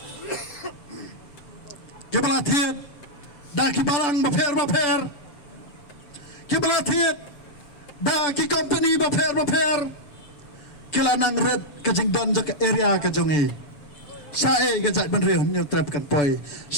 Ki pelatih dah ki barang baper. Ki pelatih da ki company baper kilanang red kajing don jaka area kajongi sae gajak benriu nyu trap kan poi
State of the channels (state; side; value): late; right; 6.9 ms